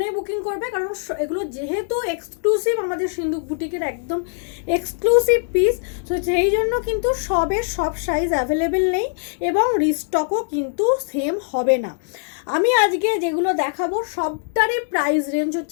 বুকিং করবে, কারণ এগুলো যেহেতু এক্সক্লুসিভ, আমাদের সিন্ধু বুটিকের একদম এক্সক্লুসিভ পিস, তো সেই জন্য কিন্তু সব সাইজ অ্যাভেলেবেল নেই এবং রিস্টকও কিন্তু সেম হবে না। আমি আজকে যেগুলো দেখাবো সবটারই প্রাইস রেঞ্জ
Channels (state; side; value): silent; right; digital silence